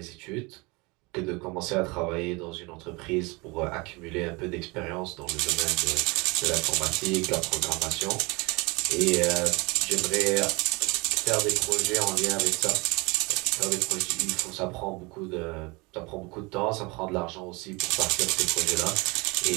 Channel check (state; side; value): quieter; left; 26.3 dB